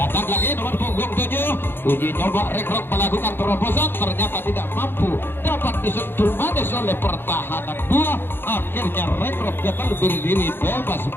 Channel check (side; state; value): right; late; 0.10 ms